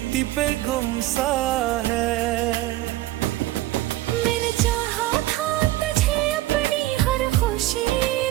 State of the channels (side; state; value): left; quieter; 16.3 dB